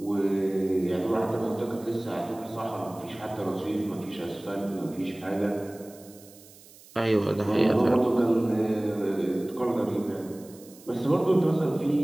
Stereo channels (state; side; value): noise; right; hiss, 22 dB below the sound